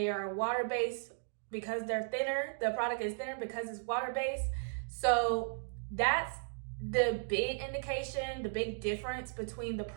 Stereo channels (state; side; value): silent; left; digital silence